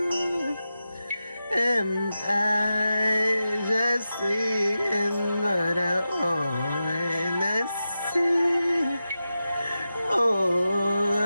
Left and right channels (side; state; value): both; inverted; correlation -0.92